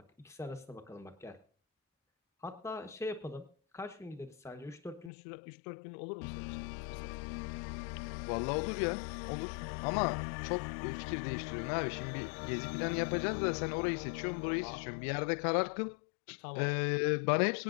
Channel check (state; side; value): drops out; right; at 5.1 s